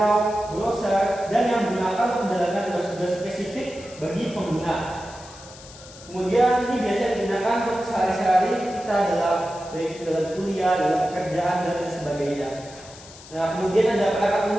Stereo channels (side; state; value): left; noise; hiss, 19 dB below the sound